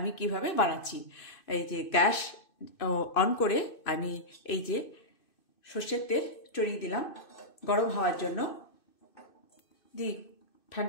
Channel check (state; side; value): late; right; 2.6 ms